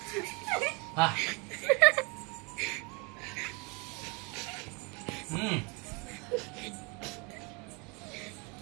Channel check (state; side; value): quieter; left; 30.4 dB